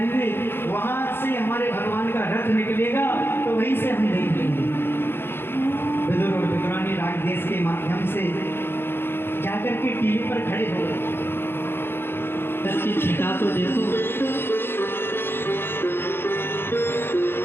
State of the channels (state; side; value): late; right; 0.11 ms